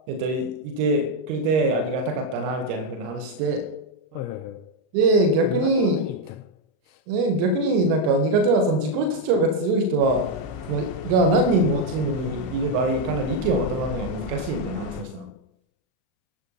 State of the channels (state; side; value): late; left; 39 ms